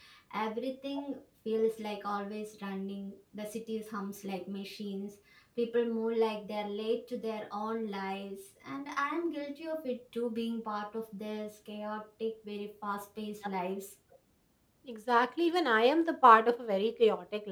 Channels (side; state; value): both; identical; correlation 1.00